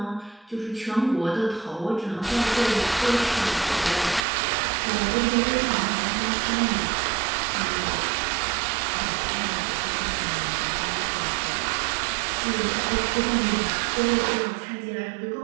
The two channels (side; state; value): left; drops out; at 4.2 s